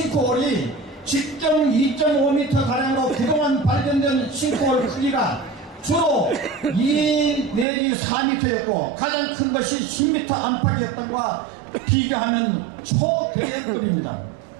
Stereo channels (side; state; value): left; drops out; at 7.7 s